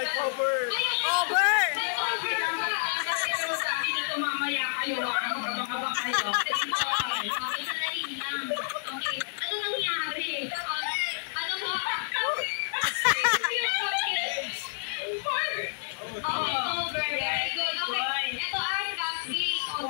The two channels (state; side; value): silent; right; 56 dB below the other